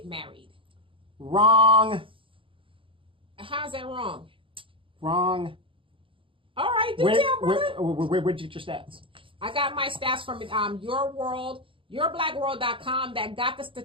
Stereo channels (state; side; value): late; left; 0.25 ms